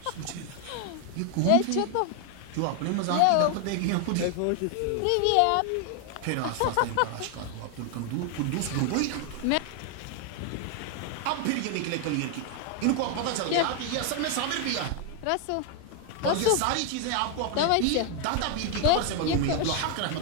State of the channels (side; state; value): both; different; correlation 0.00